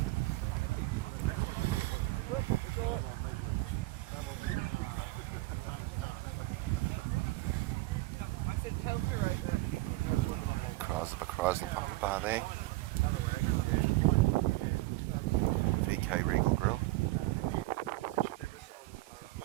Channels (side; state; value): left; quieter; 20.1 dB